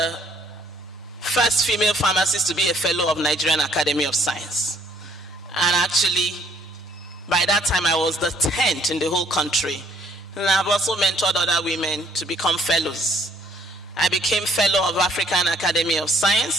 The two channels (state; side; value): normal; both; correlation 0.63